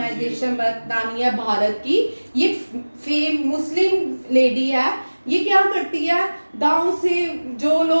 बतानी है भारत की. ये मुस्लिम लेडी है. ये क्या करती है? गांव से जो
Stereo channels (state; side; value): inverted; both; correlation -1.00